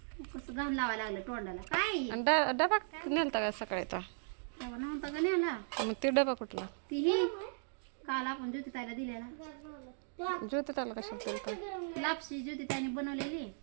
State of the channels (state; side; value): silent; left; digital silence